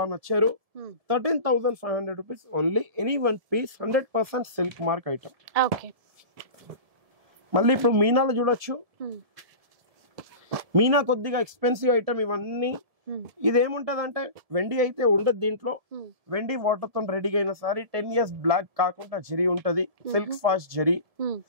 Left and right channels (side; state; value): left; late; 1.7 ms